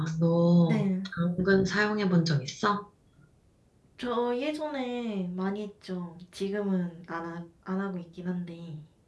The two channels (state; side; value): identical; both; correlation 1.00